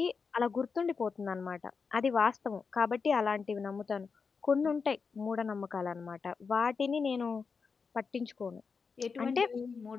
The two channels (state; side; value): quieter; right; 5.3 dB